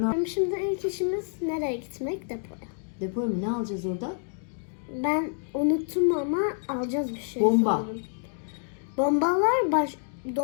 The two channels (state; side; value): silent; right; digital silence